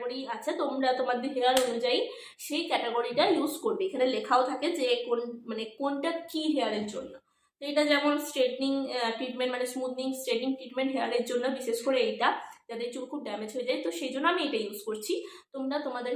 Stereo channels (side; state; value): both; identical; correlation 1.00